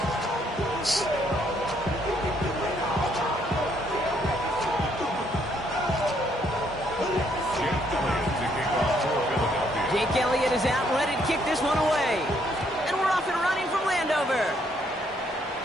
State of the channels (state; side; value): normal; both; correlation 0.70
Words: Jake Elliott is out, ready to kick this one away. And we're off and running from Landover.